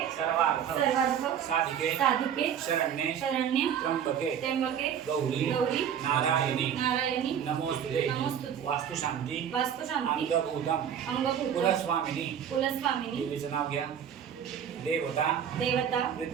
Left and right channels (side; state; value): left; quieter; 8.7 dB